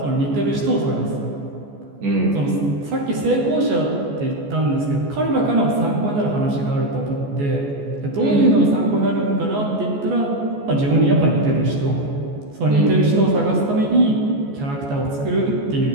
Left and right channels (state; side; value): late; left; 14 ms